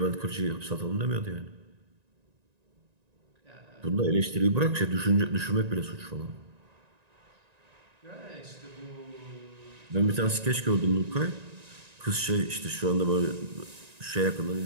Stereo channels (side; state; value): left; late; 1.9 ms